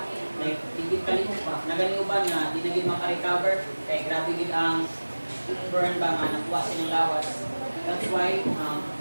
like, tigit kalimot pa, naganiuban na, di na gid makarecover, kaya grabe gid ang burn ba nga, nakuha silang lawas. That's why,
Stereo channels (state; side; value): inverted; both; correlation -1.00